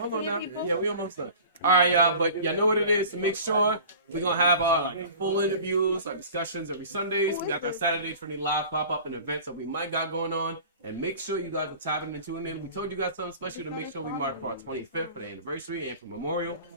on now. Yeah, we almost done. All right, y'all, but y'all know what it is. To make sure we're gonna have full interviews, discussions every Sundays. We got that Saturday Trinity Live pop up and events that we might got going on. And make sure you guys are tapping and tuning in. We told you guys something special to make sure we mark for our 25th for the anniversary and for Memorial.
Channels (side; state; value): both; inverted; correlation -0.42